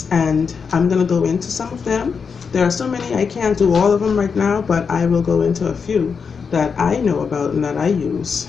and I'm going to go into some of them. There are so many, I can't do all of them right now, but I will go into a few that I know about and that I use,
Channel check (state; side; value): quieter; right; 5.8 dB